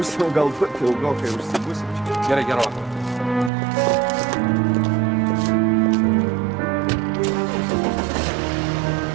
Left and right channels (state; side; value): drops out; left; at 3.5 s